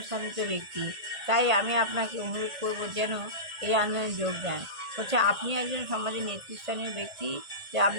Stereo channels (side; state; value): left; late; 1.8 ms